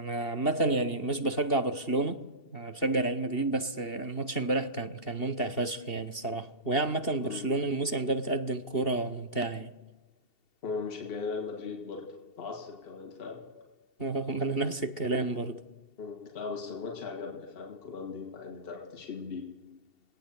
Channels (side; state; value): right; late; 2.7 ms